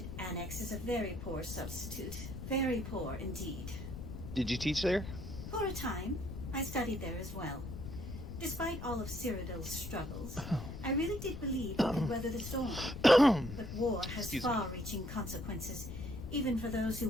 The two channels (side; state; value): left; noise; rumble, 8 dB below the sound